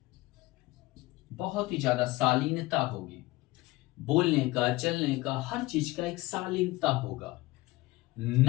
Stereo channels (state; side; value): quieter; right; 19.7 dB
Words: बहुत ही ज्यादा शालीनता होगी, बोलने का, चलने का, हर चीज का एक शालीनता होगा,